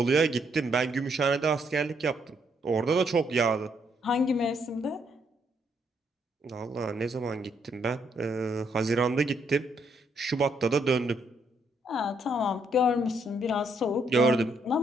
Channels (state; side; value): normal; both; correlation 0.73